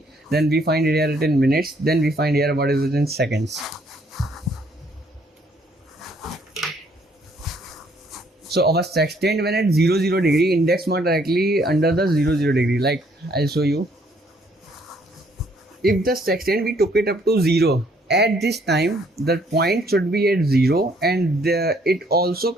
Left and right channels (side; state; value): both; normal; correlation 0.66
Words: then we find it here in minutes, then we find here what is it in seconds. So our sextant when at 0 degree, index mark directly under the 0 degree. Like I'll show you. if the sextant we took it up to 0, at this time the point should be at 0, and it also